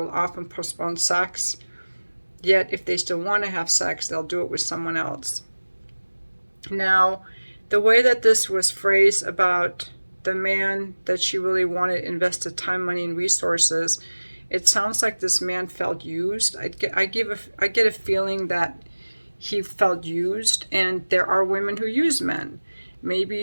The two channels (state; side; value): inverted; both; correlation -1.00